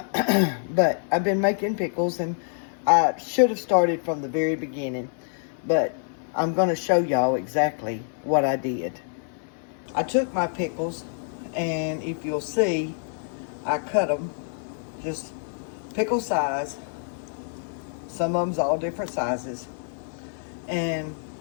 I've been making pickles, and I should have started from the very beginning. But I'm going to show y'all exactly what I did. I took my pickles, and if you'll see, I cut them just pickle size. Some of them's all different sizes. And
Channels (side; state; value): right; silent; 61 dB below the other